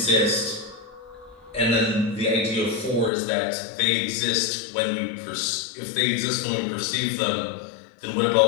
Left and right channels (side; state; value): right; drops out; at 3.1 s